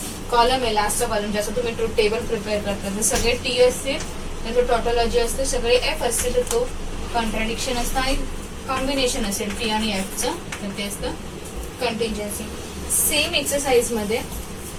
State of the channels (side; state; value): both; identical; correlation 1.00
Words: कॉलम आहे, लास्टचा कॉलम, ज्याचा तुम्ही ट्रूथ टेबल प्रिपेअर करता, जर सगळे टी असते तर तो टॉटोलॉजी असते, सगळे एफ असते तर तो कॉन्ट्राडिक्शन असतं, आणि कॉम्बिनेशन असेल टी आणि एफचं तर ते असतं कंटिंजन्सी. सेम एक्सरसाइज मध्ये